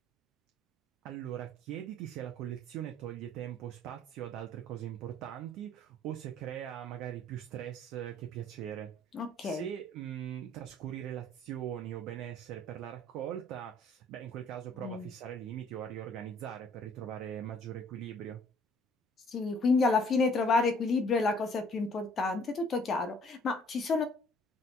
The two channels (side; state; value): both; normal; correlation 0.58